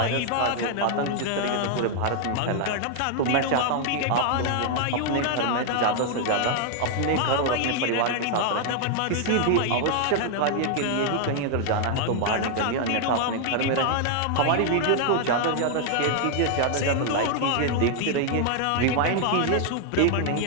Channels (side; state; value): both; different; correlation 0.00